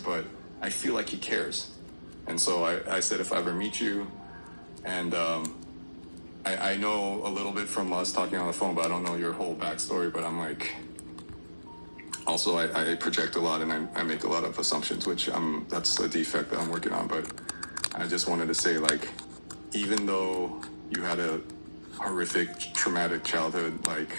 but I feel like he cares. And so I said, if I ever meet you, and I know a little bit from us talking on the phone, but I don't know your whole backstory. But I'm like, also I project a lot and I make a lot of assumptions, which that's a defect that I'm working on. But I just wanted to say, like, even though you had a horrific, traumatic childhood, like,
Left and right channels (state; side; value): inverted; both; correlation -1.00